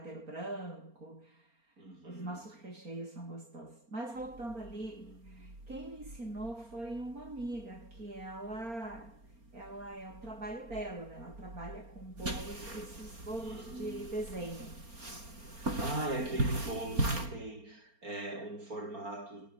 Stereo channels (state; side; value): late; left; 4.3 ms